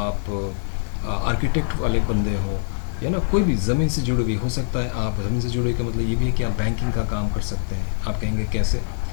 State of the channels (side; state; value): right; silent; 63 dB below the other